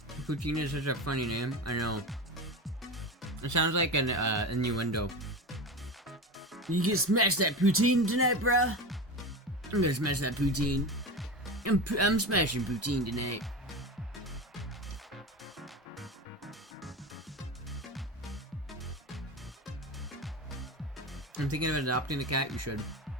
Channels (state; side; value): normal; both; correlation 0.25